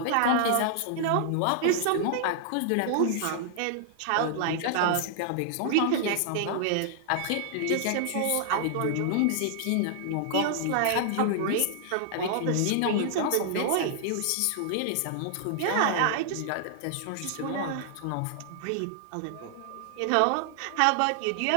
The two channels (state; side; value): different; both; correlation -0.01